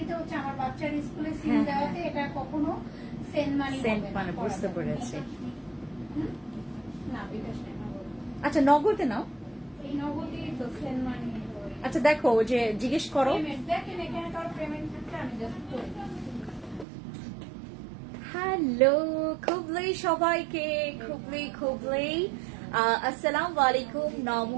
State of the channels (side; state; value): left; drops out; at 16.9 s